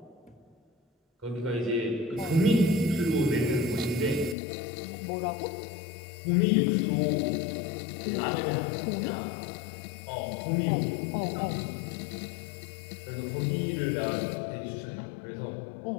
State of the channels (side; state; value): right; drops out; at 4.4 s